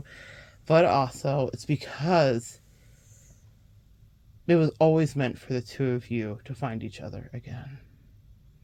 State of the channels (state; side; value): identical; both; correlation 1.00